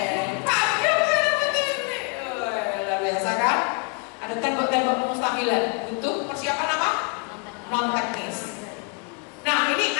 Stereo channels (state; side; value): quieter; right; 32.8 dB